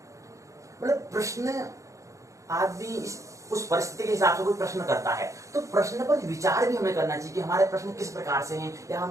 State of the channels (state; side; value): late; left; 0.15 ms